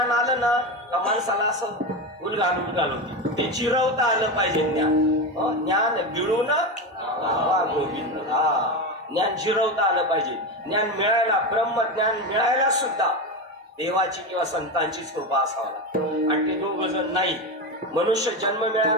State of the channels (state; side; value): normal; both; correlation 0.18